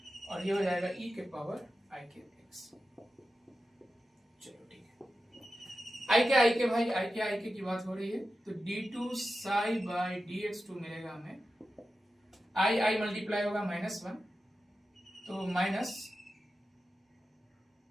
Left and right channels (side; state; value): both; normal; correlation 0.92